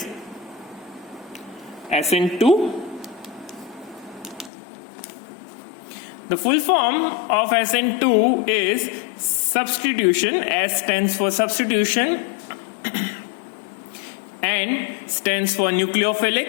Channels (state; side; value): drops out; right; at 4.5 s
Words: SN2. The full form of SN2 is substitution. S stands for substitution, N stands for